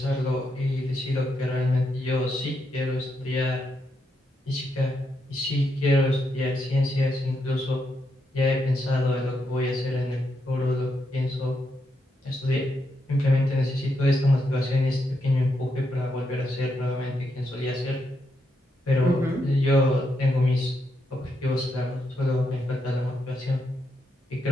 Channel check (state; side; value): normal; both; correlation 0.81